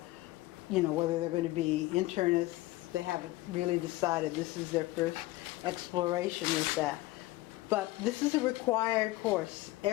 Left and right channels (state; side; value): quieter; right; 18.8 dB